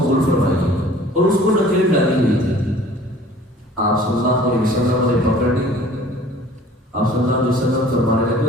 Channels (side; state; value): both; normal; correlation 0.49